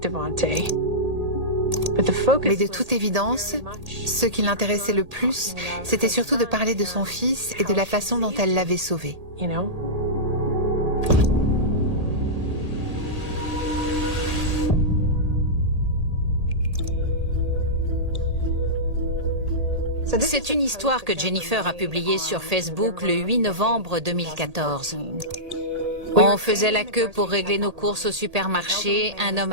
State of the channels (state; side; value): late; left; 1.8 ms